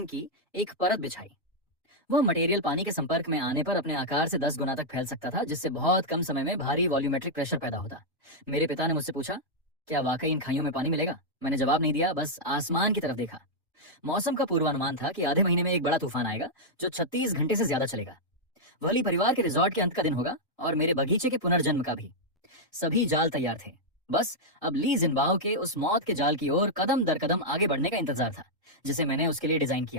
की एक परत बिछाई। वह मटेरियल पानी के संपर्क में आने पर अपने आकार से 10 गुना तक फैल सकता था, जिससे बहुत कम समय में भारी वॉल्यूमेट्रिक प्रेशर पैदा होता। मेरे पिता ने मुझसे पूछा, क्या वाकई इन खाइयों में पानी मिलेगा? मैंने जवाब नहीं दिया, बस आसमान की तरफ देखा। मौसम का पूर्वानुमान था कि आधे महीने में एक बड़ा तूफान आएगा जो 36 घंटे से ज्यादा चलेगा। वली परिवार के रिजॉर्ट के अंत का दिन होगा और मेरे बगीचे के पुनर्जन्म का भी। सभी जाल तैयार थे, बस अब ली जिनबाओ के उस मौत के जाल की ओर कदम दर कदम आगे बढ़ने का इंतजार था, जिसे मैंने उसके लिए डिजाइन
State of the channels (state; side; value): normal; both; correlation -0.04